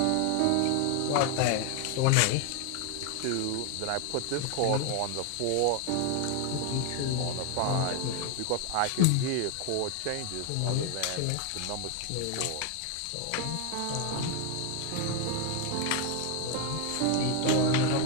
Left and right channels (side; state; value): both; different; correlation 0.01